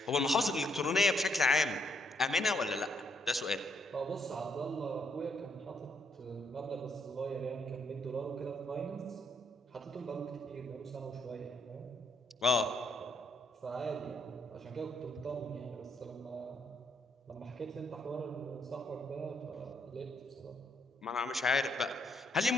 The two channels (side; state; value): both; normal; correlation 0.72